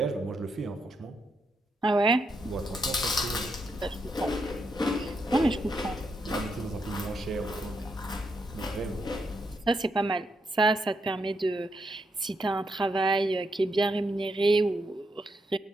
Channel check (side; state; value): both; normal; correlation 0.80